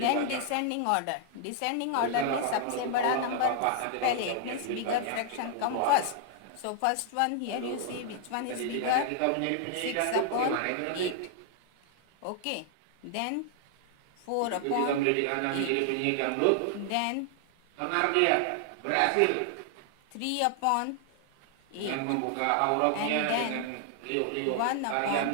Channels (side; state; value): both; different; correlation 0.00